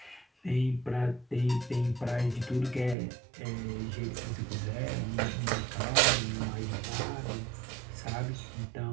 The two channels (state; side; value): drops out; left; at 3.0 s